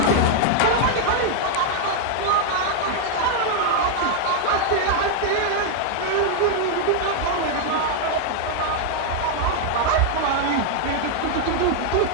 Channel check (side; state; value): both; different; correlation 0.00